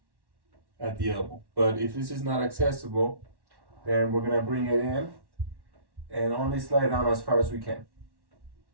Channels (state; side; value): late; left; 1.1 ms